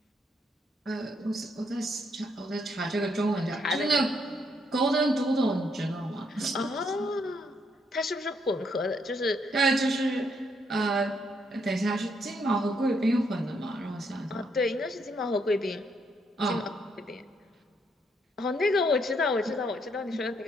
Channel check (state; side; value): normal; both; correlation 0.74